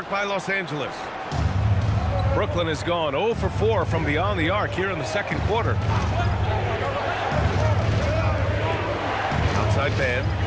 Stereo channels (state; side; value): identical; both; correlation 1.00